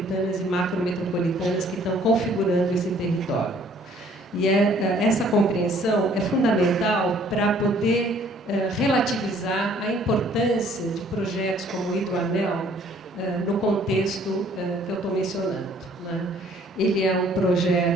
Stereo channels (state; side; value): normal; both; correlation 0.59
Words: e macrometropolitanas que estão configurando esse território. E essa compreensão é fundamental para poder relativizar a importância de projetos como o Hidroanel no contexto que eu estou mencionando. Né? Ele é um